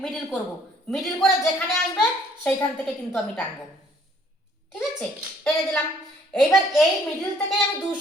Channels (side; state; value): both; normal; correlation 0.61